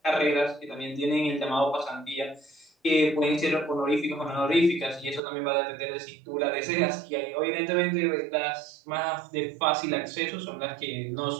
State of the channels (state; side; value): drops out; left; at 5.2 s